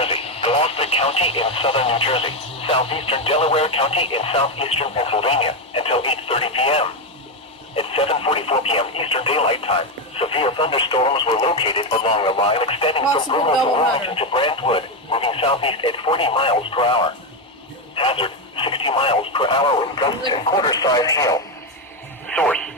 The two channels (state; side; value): normal; both; correlation 0.08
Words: Gloucester County in southern New Jersey, southeastern Delaware County in southeastern Pennsylvania until 8:30 p.m. At 7:44 p.m. Eastern Daylight Time, severe thunderstorms were located along a line extending from Brooklyn to Wilmington to Brentwood, moving southeast at 40 miles per hour. Hazard, 60 miles per hour with gusts and quarter-size hail. Source,